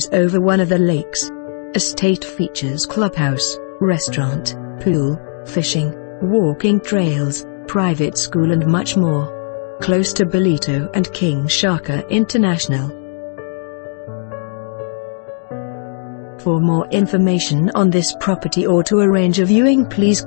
over one of the lakes. Estate features clubhouse, restaurant, pool, fishing, walking trails, private school and much more. Close to Ballito and King Shaka International. For more information on this property or to arrange a viewing, please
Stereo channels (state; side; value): silent; right; 68 dB below the other